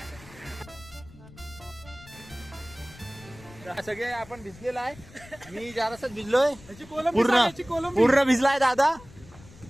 सगळे आपण भिजलेला आहे मी जरासच भिजलोय याची कोलंबी पूर्ण सांग, याची कोलंबी. पूर्ण भिजलाय दादा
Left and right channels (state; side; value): noise; left; rumble, 20 dB below the sound